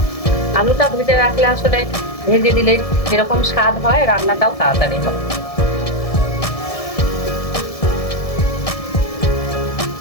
আলুটা ভেজে রাখলে আসলে ভেজে দিলে যেরকম স্বাদ হয় রান্নাটাও তাড়াতাড়ি হয়।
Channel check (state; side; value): late; right; 1.7 ms